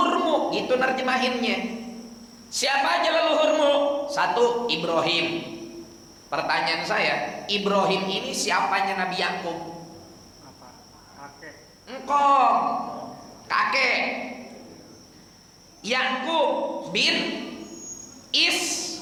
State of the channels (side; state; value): both; identical; correlation 1.00